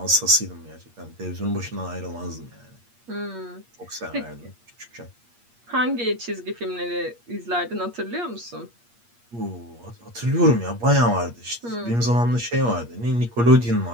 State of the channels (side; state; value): left; late; 8.5 ms